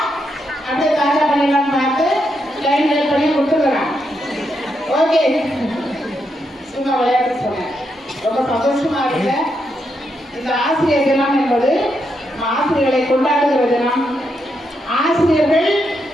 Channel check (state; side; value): normal; both; correlation 0.81